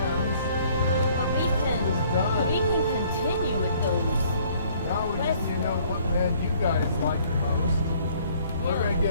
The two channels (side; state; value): both; inverted; correlation -0.59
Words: But we can continue with those. Now we just, what land you guys like the most. We're going to